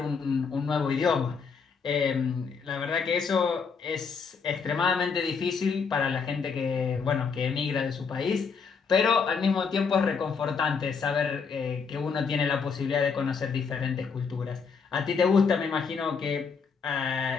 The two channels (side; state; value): right; quieter; 5.6 dB